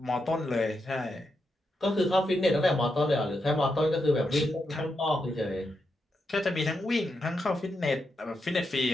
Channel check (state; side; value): normal; both; correlation 0.84